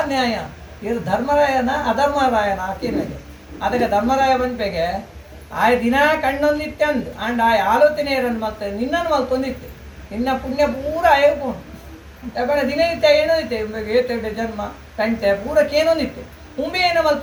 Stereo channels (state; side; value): identical; both; correlation 1.00